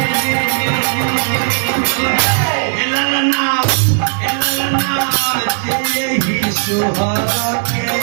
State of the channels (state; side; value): silent; left; 57 dB below the other